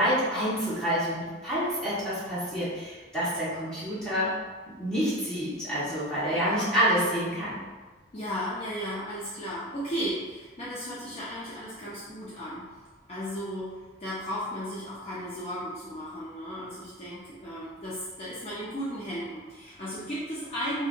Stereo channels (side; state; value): both; normal; correlation 0.24